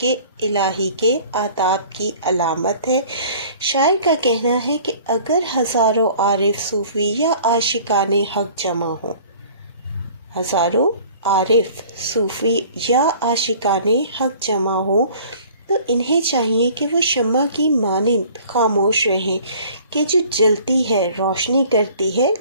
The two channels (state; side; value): inverted; both; correlation -0.50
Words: الہی کے آداب کی علامت ہے۔ شاعر کا کہنا ہے کہ اگر ہزاروں عارف صوفی یا عاشقان حق جمع ہوں، ہزاروں عارف صوفی یا عاشقان حق جمع ہوں تو انہیں چاہیے کہ وہ شمع کی مانند خاموش رہیں کہ جو جلتی ہے، روشنی کرتی ہے